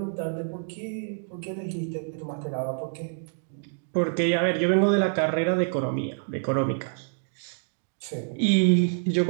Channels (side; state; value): left; silent; 60 dB below the other